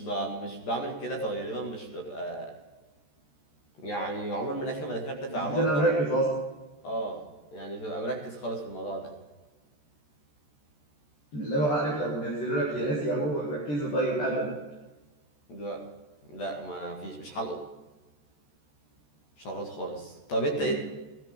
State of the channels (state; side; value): late; right; 14 ms